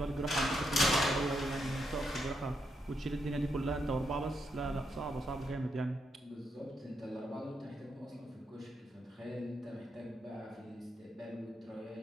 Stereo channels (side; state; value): both; normal; correlation 0.80